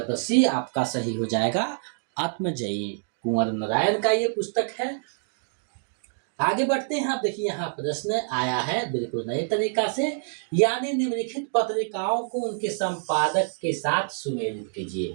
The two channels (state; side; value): silent; left; digital silence